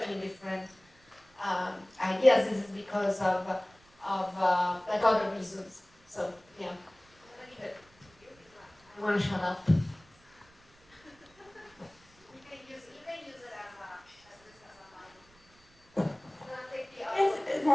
different ideas? Is it because of like other reasons? So yeah, I want to shut up. You can use it as Yes,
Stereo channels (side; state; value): right; noise; rumble, 29 dB below the sound